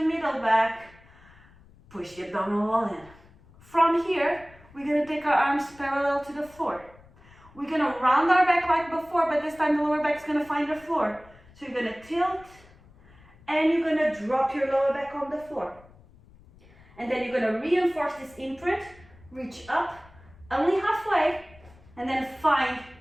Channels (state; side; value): noise; left; rumble, 25 dB below the sound